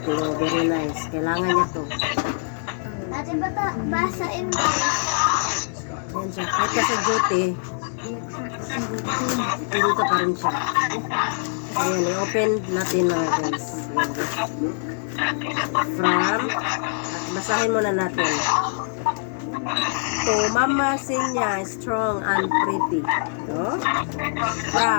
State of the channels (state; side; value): silent; right; digital silence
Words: Oh, very nice. Kailangan niya to. Dati bata, basain mo. Yan siya. Kahit ka sa duty, dito pa rin siya. Ayan, i-open natin mga guys. From, basahin muna natin. To Mama Sinya, strong and pretty. No?